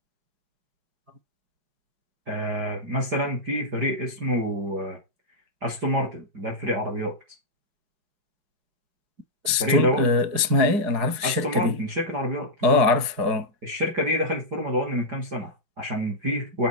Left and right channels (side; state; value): left; late; 4.8 ms